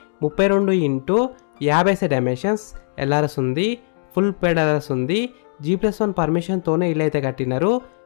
32 x 50 డైమెన్షన్స్, ఎల్ఆర్ఎస్ ఉంది, ఫుల్ పేడ్ ఎల్ఆర్ఎస్ ఉంది. G+1 పర్మిషన్తోనే ఇల్లు అయితే కట్టినారు.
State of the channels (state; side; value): silent; right; digital silence